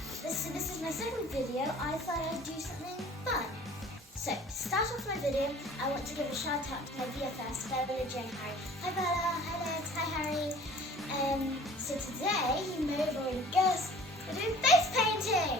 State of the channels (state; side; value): normal; both; correlation 0.49